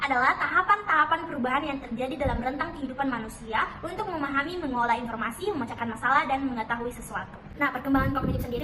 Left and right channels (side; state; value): both; identical; correlation 1.00